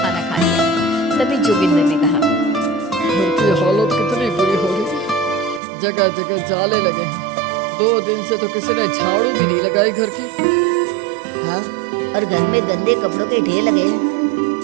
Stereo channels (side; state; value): left; drops out; at 5.6 s